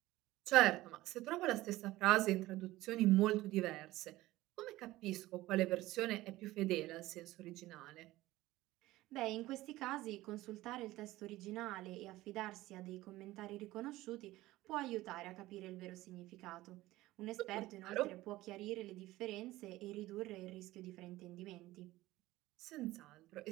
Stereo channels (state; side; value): quieter; left; 17.4 dB